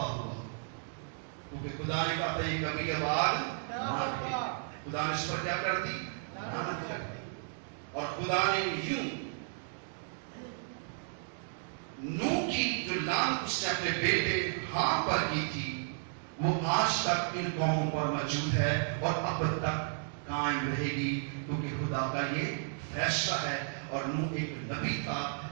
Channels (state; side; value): silent; left; digital silence